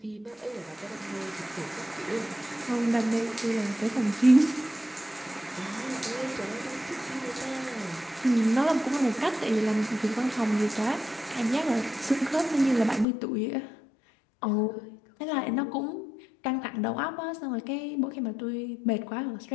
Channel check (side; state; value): right; drops out; at 13.1 s